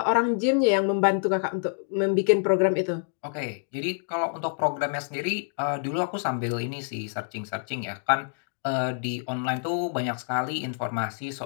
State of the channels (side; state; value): right; silent; digital silence